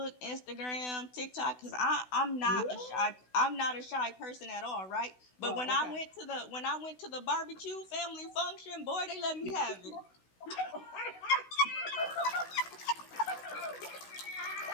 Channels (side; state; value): right; late; 16 ms